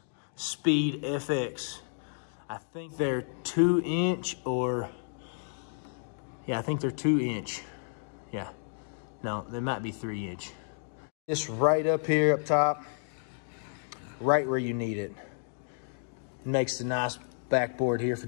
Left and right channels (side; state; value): right; silent; digital silence